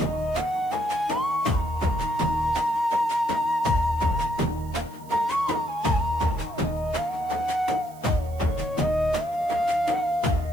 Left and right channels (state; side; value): noise; right; hiss, 24 dB below the sound